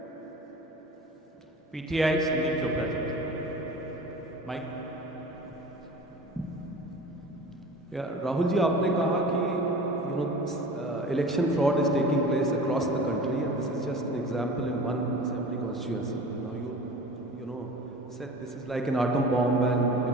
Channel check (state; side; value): normal; both; correlation 0.38